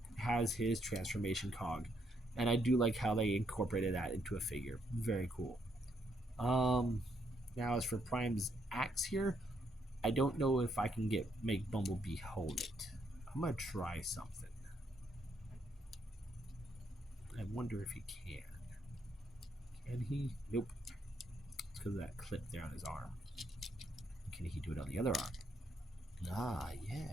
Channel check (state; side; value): normal; both; correlation 0.74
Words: has his transformation cog, and I do like how they incorporated that into a figure. Very cool. Now as for Prime's axe here, I don't know if I can make Bumblebee hold it. I'm gonna try something. I wonder if he can. Can he? Nope. It's because of that clip there on his arm. Can he do it on the other arm? Ah,